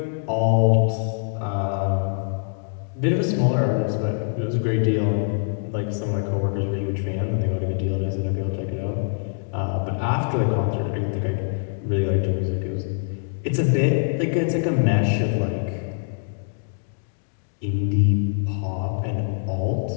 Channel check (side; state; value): right; silent; digital silence